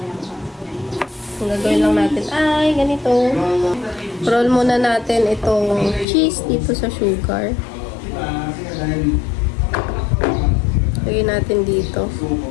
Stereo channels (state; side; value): drops out; right; at 6.1 s